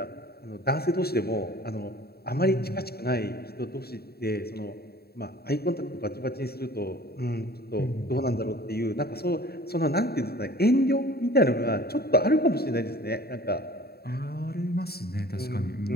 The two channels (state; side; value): late; right; 0.46 ms